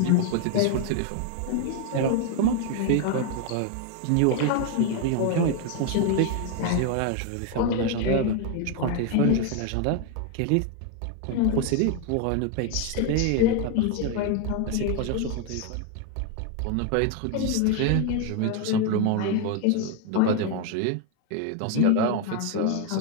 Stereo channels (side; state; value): both; different; correlation 0.01